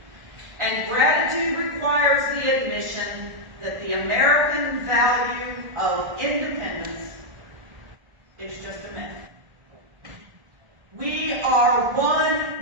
And gratitude requires the admission that the American value of independence is just a myth. We are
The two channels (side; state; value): left; late; 1.7 ms